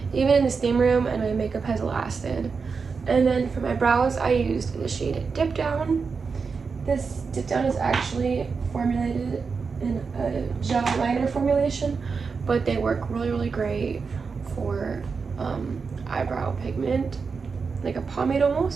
even in the steam room, and my makeup has lasted. And then for my brows, I used the shade Dip Down. This Dip Down is actually formulated in a gel liner formulation, but they work really, really great for eyebrow pigment, like a pomade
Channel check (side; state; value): left; quieter; 5.1 dB